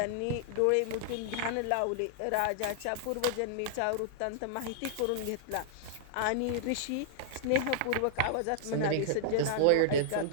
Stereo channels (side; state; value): both; different; correlation -0.01